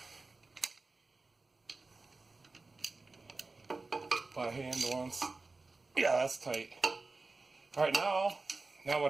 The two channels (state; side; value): quieter; left; 3.6 dB